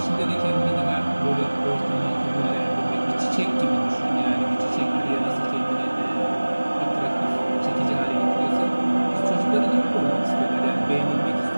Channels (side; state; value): both; inverted; correlation -1.00